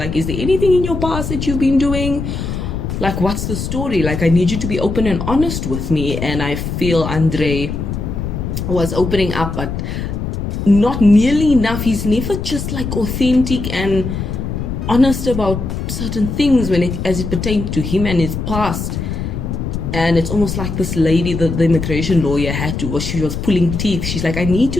is there anything in your past that you've been doing? Like, what's the story? Like, I need you to be open and honest with me. And I feel Andrei was opening up, but not nearly enough. He's never just like authentic and honest about certain things as it pertains to him and his past. And it's almost like this lady, the immigration lawyer, she was pulling teeth. She's like, I need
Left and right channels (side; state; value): left; noise; rumble, 4 dB below the sound